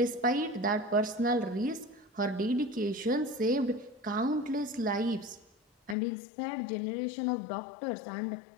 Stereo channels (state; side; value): drops out; right; at 6.0 s